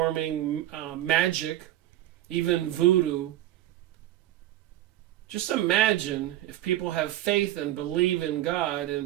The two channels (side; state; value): left; quieter; 13.8 dB